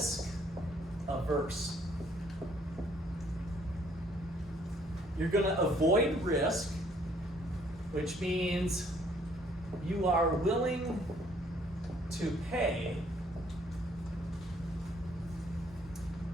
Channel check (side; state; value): both; normal; correlation 0.63